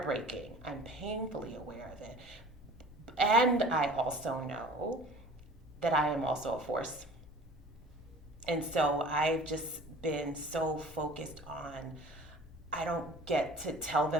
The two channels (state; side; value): normal; both; correlation 0.45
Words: I'm painfully aware of it. And I also know that I am also a force. And so I've just been so focused on, I don't get to tell